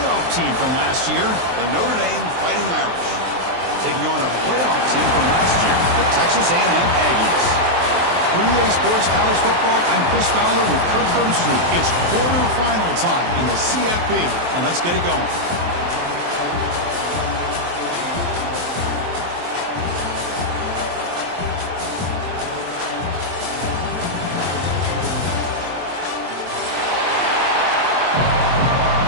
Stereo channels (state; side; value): late; left; 23 ms